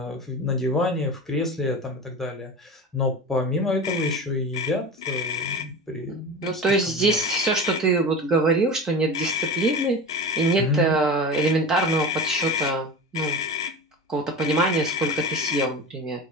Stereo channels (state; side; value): normal; both; correlation 0.29